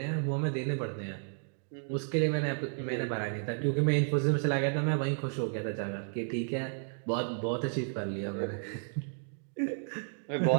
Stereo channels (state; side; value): silent; left; 56 dB below the other